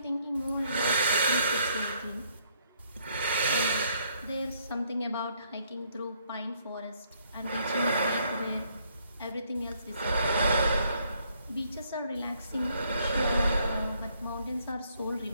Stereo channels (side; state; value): both; inverted; correlation -0.69